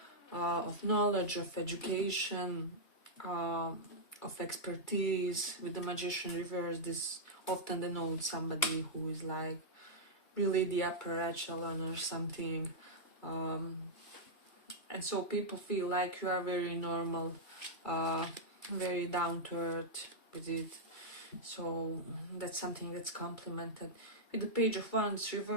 of knowledge, of education, uh, of expertise, with the magician reverse, this often denotes somebody who is like really the upper echelon or something. And so people feel like you are very normal, very down to earth with it. So that's something that's complemented. With the Page of Wands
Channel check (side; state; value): right; late; 2.3 ms